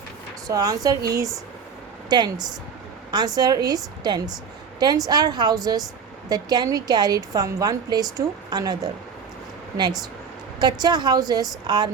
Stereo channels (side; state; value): left; quieter; 6.2 dB